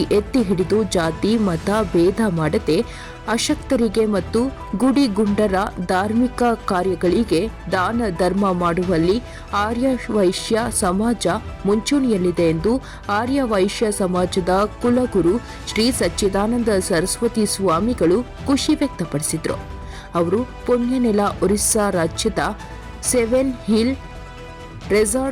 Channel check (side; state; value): both; identical; correlation 1.00